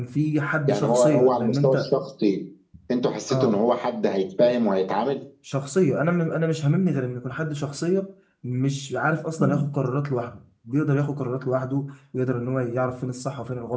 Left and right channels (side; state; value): both; identical; correlation 1.00